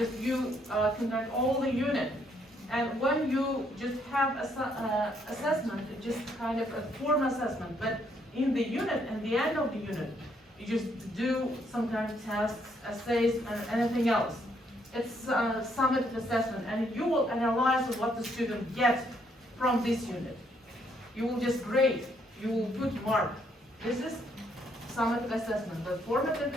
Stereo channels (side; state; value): both; normal; correlation 0.71